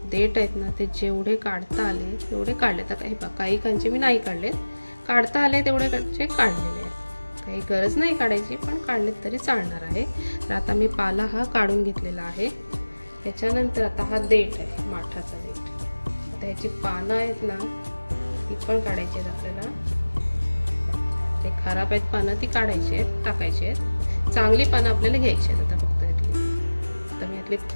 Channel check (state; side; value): inverted; both; correlation -1.00